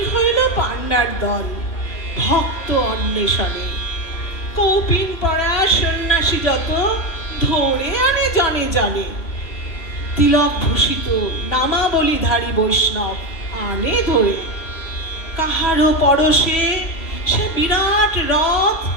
হইল পান্নার দল ভক্ত অন্বেষণে, কৌপিন পড়া সন্ন্যাসী যত ধরে আনে জনে জনে। তিলক ভূষিত নামাবলীধারী বৈষ্ণব আনে ধরে, কাহারও পরশে সে বিরাট রথ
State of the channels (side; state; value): right; late; 3.0 ms